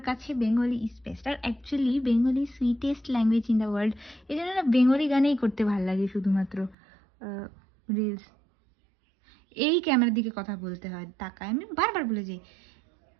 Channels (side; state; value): left; drops out; at 6.8 s